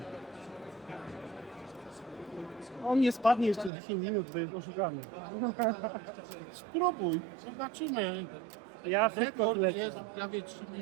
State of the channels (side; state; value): left; drops out; at 3.7 s